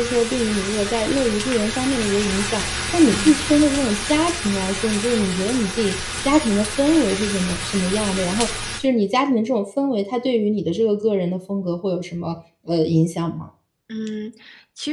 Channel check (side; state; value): both; identical; correlation 1.00